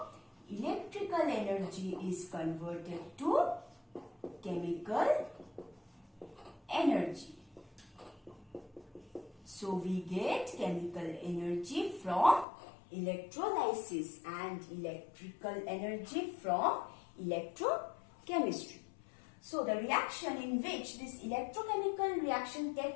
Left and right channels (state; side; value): drops out; right; at 12.5 s